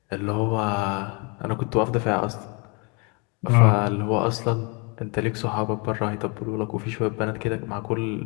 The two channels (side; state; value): right; quieter; 32.4 dB